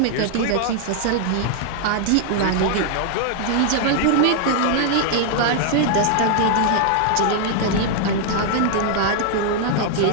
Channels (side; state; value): both; different; correlation 0.00